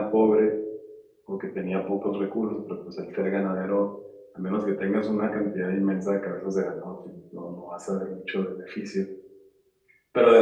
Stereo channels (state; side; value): identical; both; correlation 1.00